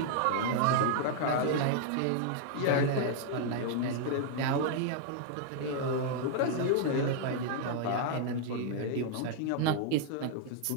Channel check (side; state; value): both; different; correlation -0.01